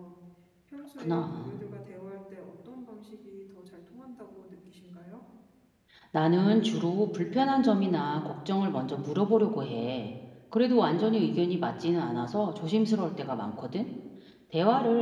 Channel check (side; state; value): both; identical; correlation 1.00